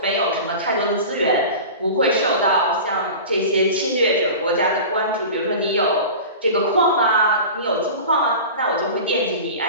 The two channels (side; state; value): both; inverted; correlation -0.34